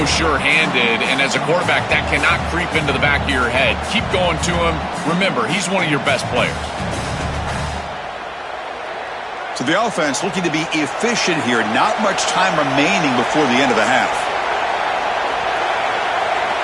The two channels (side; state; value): both; identical; correlation 1.00